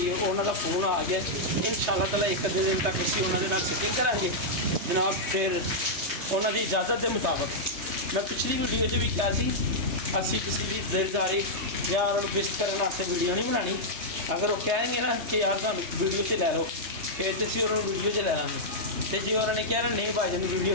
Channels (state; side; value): late; left; 3.3 ms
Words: है, उन्होंने फोन आ गया। इंशाअल्लाह ताला एक अद्धे दिन तक असी उन्होंने फिटिंग करांगे जनाब। फिर उन्होंने इजाज़त के मुताबिक मैं पिछली वीडियो भी कहा सी असी किसी की दिलदारी या उन्होंने विश करने वास्ते वीडियो नहीं बनानी। अगर वो कहेंगे ना कि यार तुम वीडियो से लै लो, फिर तो असी उन्होंने वीडियो से लै लेंगे। तो जो उन्होंने कहना नहीं भाई जी वीडियो